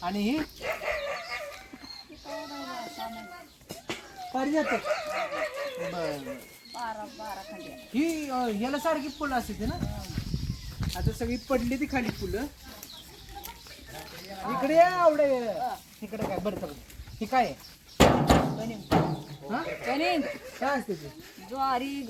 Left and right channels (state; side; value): identical; both; correlation 1.00